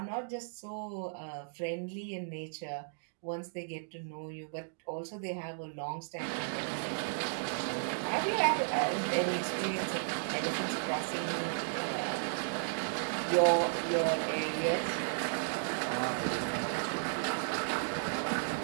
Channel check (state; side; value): silent; left; digital silence